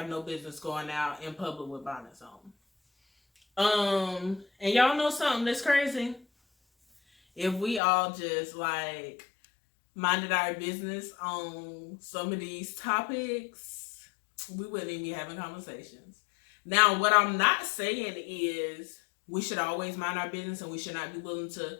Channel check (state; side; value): drops out; right; at 7.8 s